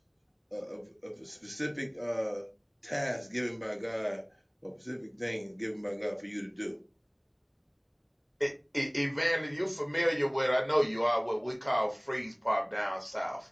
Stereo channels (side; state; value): both; identical; correlation 1.00